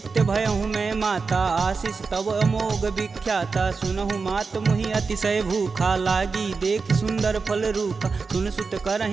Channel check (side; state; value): left; quieter; 4.7 dB